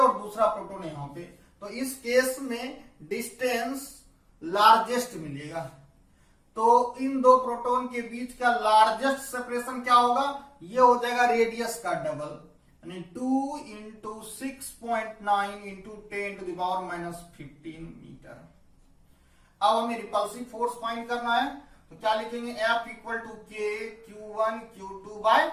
दूसरा प्रोटॉन यहां पे, तो इस केस में डिस्टेंस लार्जेस्ट मिलेगा। तो इन दो प्रोटॉन के बीच का लार्जेस्ट सेपरेशन क्या होगा? ये हो जाएगा रेडियस का डबल, यानी 2 into 6.9 into 10 to the power minus 15 metre. अब हमें रिपल्सिव फोर्स फाइंड करना है, तो क्या लिखेंगे? F equal to K Q1 Q2 by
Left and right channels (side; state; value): both; identical; correlation 1.00